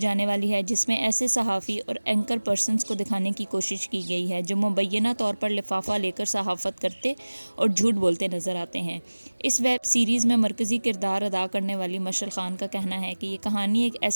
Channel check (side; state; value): both; inverted; correlation -1.00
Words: والی ہے جس میں ایسے صحافی اور اینکر پرسنز کو دکھانے کی کوشش کی گئی ہے جو مبینہ طور پر لفافہ لے کر صحافت کرتے اور جھوٹ بولتے نظر آتے ہیں۔ اس ویب سیریز میں مرکزی کردار ادا کرنے والی مشعل خان کا کہنا ہے کہ یہ کہانی ایک